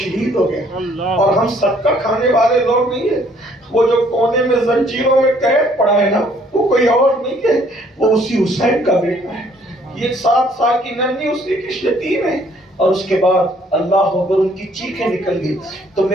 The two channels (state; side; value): normal; both; correlation 0.62